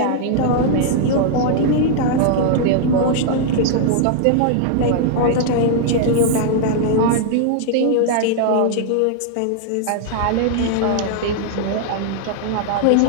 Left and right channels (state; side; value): different; both; correlation -0.01